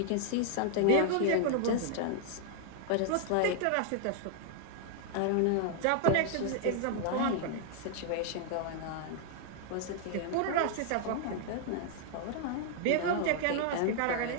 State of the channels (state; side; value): different; both; correlation 0.00